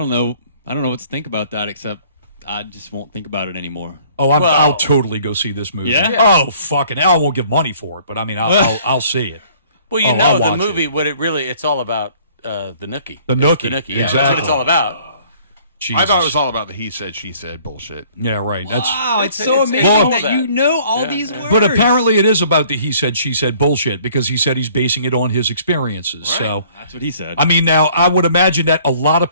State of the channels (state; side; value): inverted; both; correlation -0.56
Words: know what to think about that, except I just won't think about it anymore. Oh, I'll totally go see this movie. Yeah? Oh, fucking hell, I won't give money for it, but I mean, I'll see it. Well, I'll the watch movie, it. it's all about the Nookie. The It's Nookie, The Nookie, yeah. exactly. That's what it's all about. Jesus. I thought it was all about the he said, she said bullshit. Yeah, right. That's. Wow, it's so amazing all that you know all these words. But apparently it is about the he said, she said bullshit because he said he's basing it on his experiences. So, That's what he said. I mean, now, I would imagine that a lot of